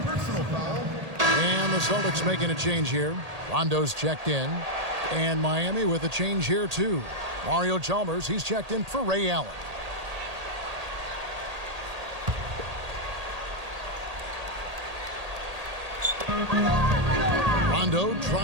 personal foul. And the Celtics making a change here. Rondo's checked in. And Miami with a change here, too. Mario Chalmers, he's checked in for Ray Allen. Rondo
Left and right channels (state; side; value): late; left; 1.8 ms